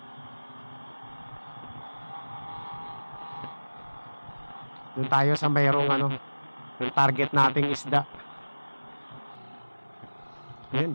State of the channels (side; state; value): both; inverted; correlation -1.00